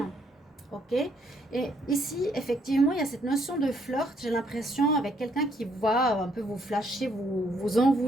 ok? Et ici, effectivement, il y a cette notion de flirt, j'ai l'impression, avec quelqu'un qui va un peu vous flasher, vous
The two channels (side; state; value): both; normal; correlation 0.70